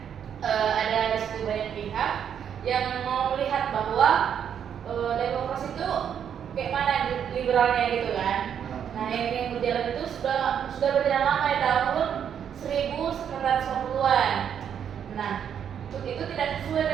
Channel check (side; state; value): left; quieter; 8.5 dB